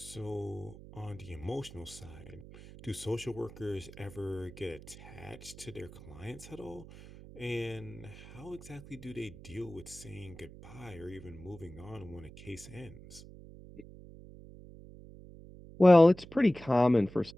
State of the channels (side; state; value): right; noise; hum, 17 dB below the sound